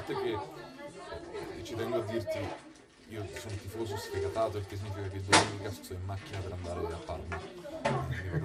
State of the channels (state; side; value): identical; both; correlation 1.00